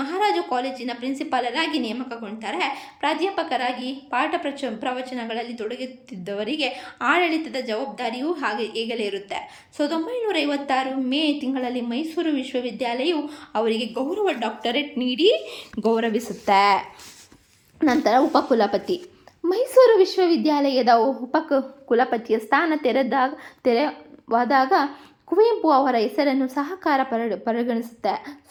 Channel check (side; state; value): both; identical; correlation 1.00